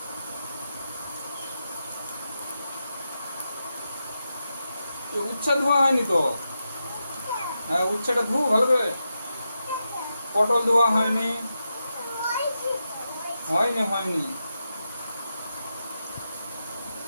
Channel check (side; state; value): both; inverted; correlation -0.88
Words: উচ্ছা ধোয়া হয়নি তো। হ্যাঁ, উচ্ছেটা ধু ভালো করে। পটল ধোয়া হয়নি। হয়নি, হয়নি।